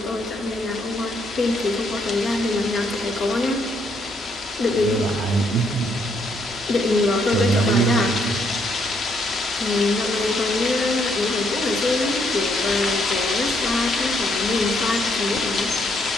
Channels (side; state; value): both; normal; correlation 0.72